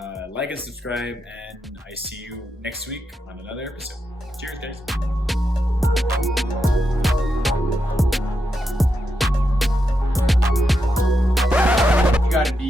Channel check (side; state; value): both; normal; correlation 0.85